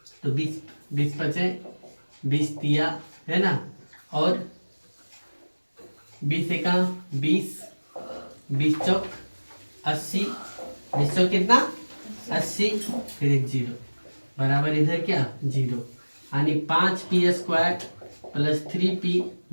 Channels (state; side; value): inverted; both; correlation -1.00